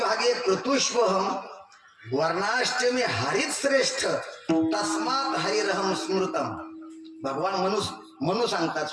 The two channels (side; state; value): both; identical; correlation 1.00